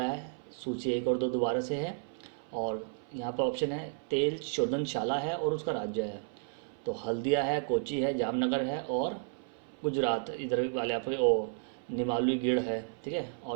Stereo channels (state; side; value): silent; left; 56 dB below the other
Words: है सूची 1 और 2 दोबारा से है, और यहाँ पर ऑप्शन है तेल शोधनशाला है और उसका राज्य है। तो हल्दिया है, कोची है, जामनगर है और गुजरात इधर वाले आपके ओ निमालुगढ़ है, ठीक है।